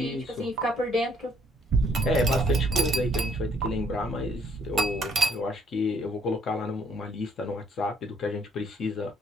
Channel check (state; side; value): normal; both; correlation 0.65